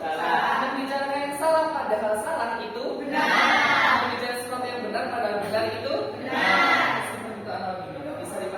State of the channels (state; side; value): identical; both; correlation 1.00